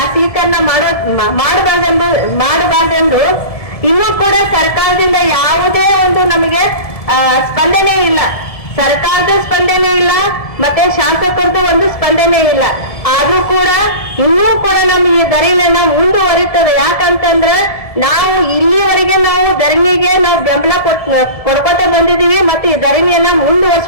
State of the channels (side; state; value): right; late; 1.7 ms